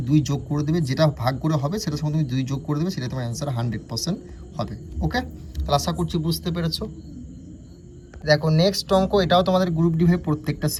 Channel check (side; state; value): both; identical; correlation 1.00